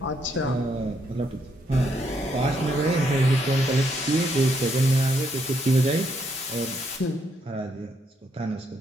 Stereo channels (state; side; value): normal; both; correlation 0.74